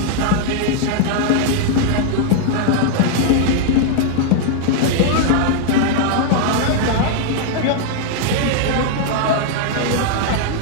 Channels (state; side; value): different; both; correlation 0.00